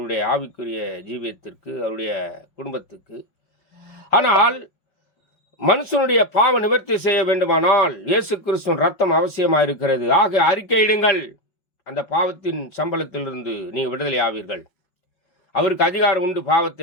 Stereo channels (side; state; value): right; late; 5.4 ms